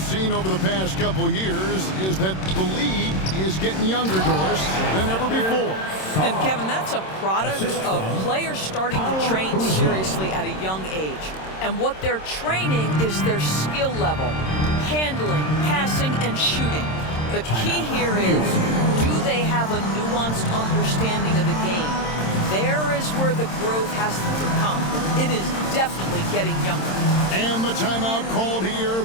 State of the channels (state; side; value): late; right; 26 ms